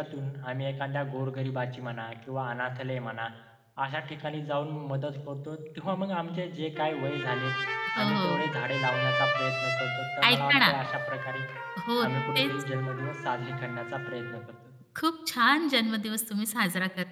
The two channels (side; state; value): both; identical; correlation 1.00